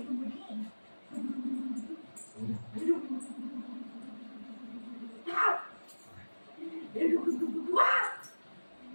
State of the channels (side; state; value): both; inverted; correlation -1.00